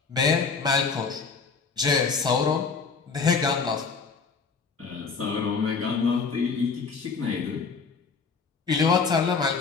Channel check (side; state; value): right; quieter; 5.0 dB